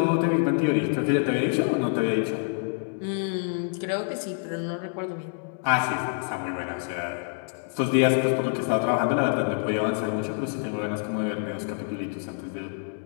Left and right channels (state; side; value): silent; right; 60 dB below the other